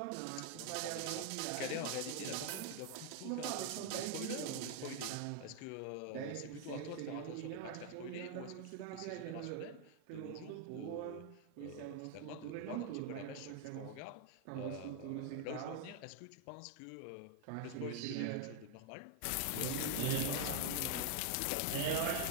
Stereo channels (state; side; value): different; both; correlation 0.00